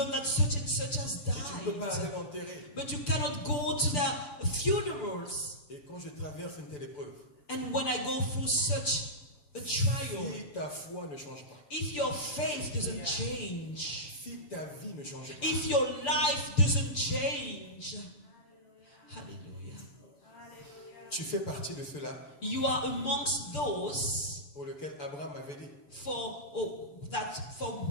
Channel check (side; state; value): right; late; 6.9 ms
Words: that such and such has Et tu ne peux pas aller died. l'enterrer. But you cannot go to the funerals. Et quand je traverse une telle épreuve, And when I go through such a trial, si ta foi ne change pas, if your faith doesn't change, si ta vie ne change pas, if your life doesn't change, hallelujah, tu fais partie de ceux-là you are amongst those pour lesquels Abraham avait dit, for